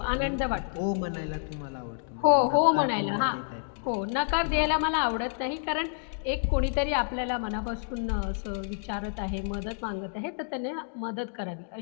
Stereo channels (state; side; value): silent; right; digital silence